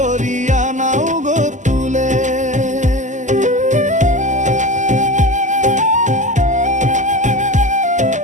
নাও গো তুলে।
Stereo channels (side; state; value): left; late; 0.35 ms